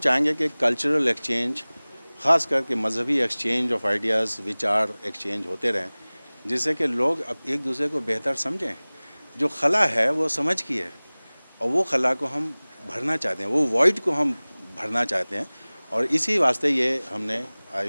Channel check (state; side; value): inverted; both; correlation -1.00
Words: कि कल्चरल एक्सचेंज, ख़ास करके मजहबी एक्सचेंज ऑफ आइडियाज़, विचार एक्सचेंज होते रहें, जिससे कि लोग अब एक दूसरे को बेहतर समझें। जो खला है वो समझ की है, और वो खला को हम भरना चाहते हैं, वो वॉइड को हम भरना चाहते हैं, और इसी वास्ते ये हमने